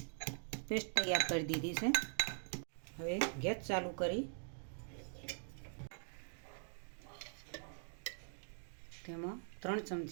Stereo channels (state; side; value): silent; left; digital silence